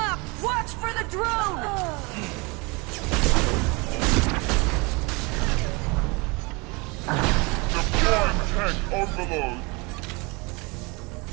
Watch for the drone! Deploying tank overload.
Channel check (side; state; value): left; quieter; 27.5 dB